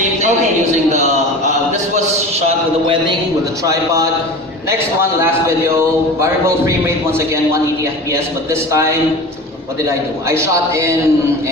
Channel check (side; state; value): both; normal; correlation 0.34